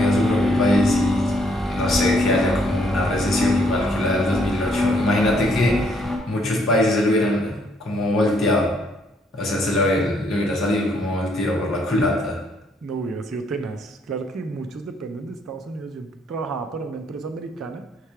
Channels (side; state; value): both; normal; correlation 0.69